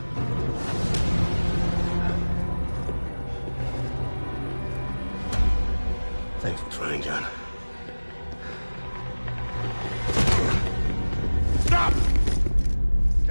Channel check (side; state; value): both; inverted; correlation -1.00